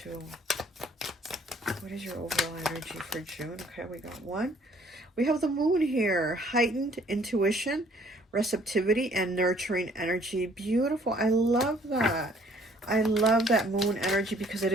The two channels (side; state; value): both; normal; correlation 0.60